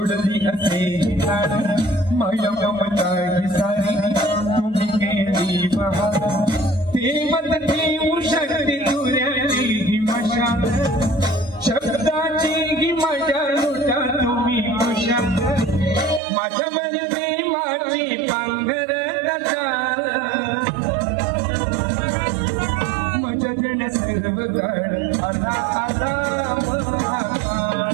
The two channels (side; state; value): left; drops out; at 16.2 s